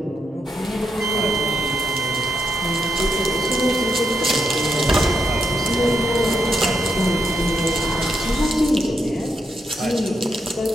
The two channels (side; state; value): both; normal; correlation 0.81